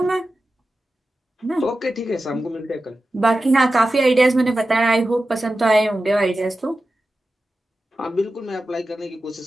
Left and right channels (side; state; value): both; normal; correlation 0.93